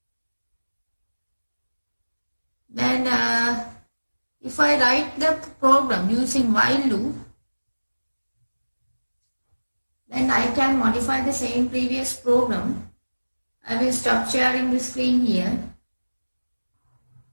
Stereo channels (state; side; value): inverted; both; correlation -1.00